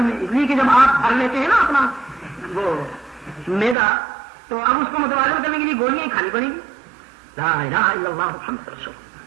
اس لیے کہ جب آپ بھر لیتے ہیں نا اپنا وہ میدا تو اب اس کو متوازن کرنے کے لیے گولیاں ہی کھانی پڑیں گی. لا الہ الا اللہ محمد رسول،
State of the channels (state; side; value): drops out; left; at 3.8 s